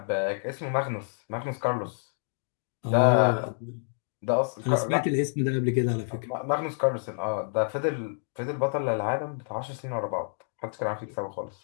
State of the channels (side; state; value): right; silent; digital silence